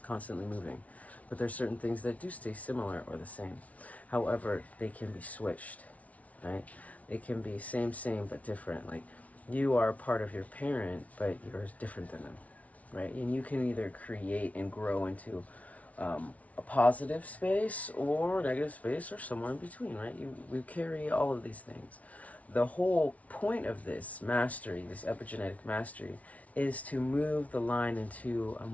constantly moving. But there's certain things that do stay similar or the same. However, they can be switched, right? They can be same, but different. Like, you are a part of your parent, but you're different than them, right? And you can either create and grow into a positive space or negative space or somewhere in between, right? We carry all of these things. The whole point of this mastery, this epigenetic mastery, is to move the line into a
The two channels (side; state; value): right; late; 0.068 ms